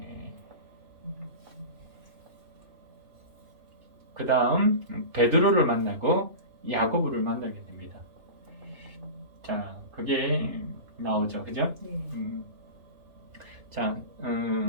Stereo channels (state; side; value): late; left; 3.1 ms